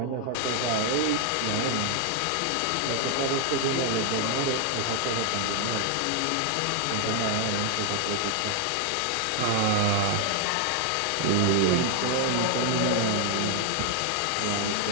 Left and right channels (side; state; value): both; different; correlation 0.00